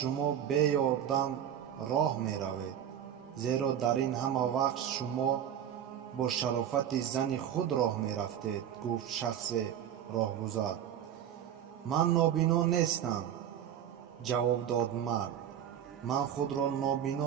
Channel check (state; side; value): quieter; left; 9.8 dB